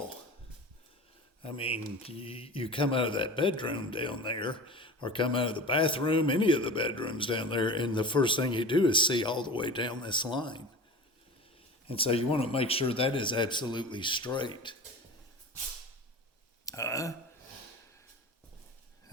I mean, you come out of that bedroom down there, or come out of the bathroom, any of the bedrooms down there, and the first thing you do is see all the way down this line. And so you want to make sure that is absolutely straight.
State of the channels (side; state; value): both; normal; correlation 0.34